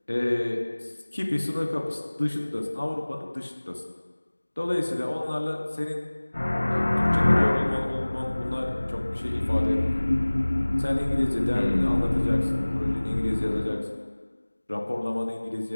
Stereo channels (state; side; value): inverted; both; correlation -1.00